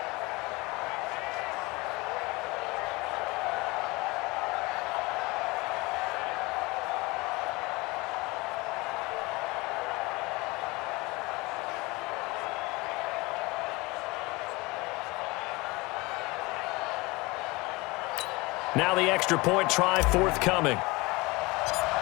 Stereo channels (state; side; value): quieter; right; 23.8 dB